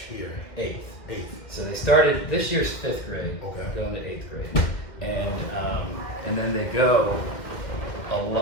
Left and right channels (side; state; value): right; late; 2.1 ms